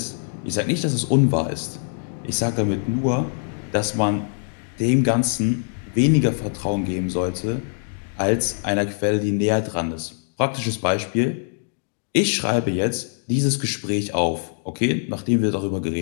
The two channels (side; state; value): right; silent; digital silence